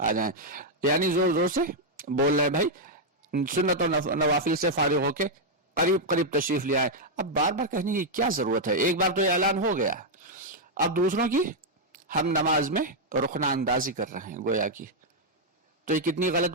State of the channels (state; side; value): normal; both; correlation -0.03